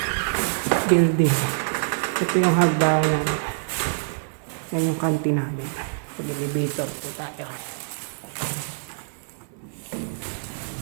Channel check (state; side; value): silent; left; 62 dB below the other